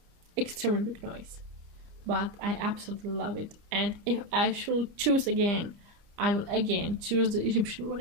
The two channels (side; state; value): left; late; 29 ms